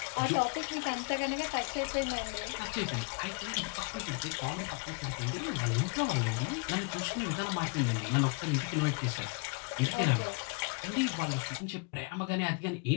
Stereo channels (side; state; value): right; quieter; 32.6 dB